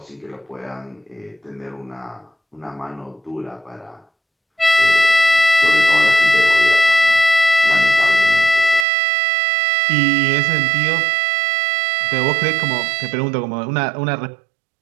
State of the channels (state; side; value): drops out; left; at 8.8 s